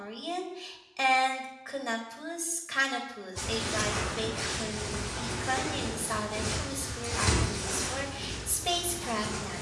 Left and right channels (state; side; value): identical; both; correlation 1.00